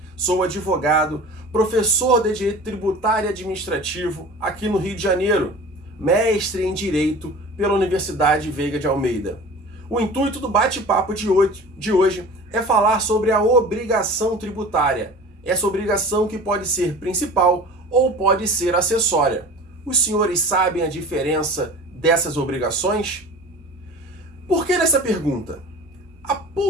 sou advogado, professor de Direito Tributário e Administrativo aqui no Rio de Janeiro, mestre em Direito pela Universidade Veiga de Almeida. O intuito do bate-papo de hoje é falar sobre a obrigação tributária. Essa obrigação que pode ser principal ou pode ser acessória. Os senhores sabem a diferença dessas obrigações? Por que dessa pergunta? Há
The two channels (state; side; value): normal; both; correlation 0.39